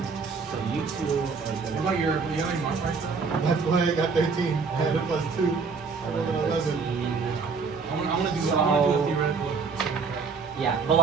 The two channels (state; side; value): quieter; left; 5.0 dB